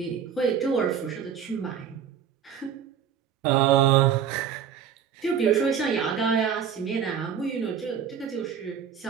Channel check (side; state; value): left; quieter; 8.0 dB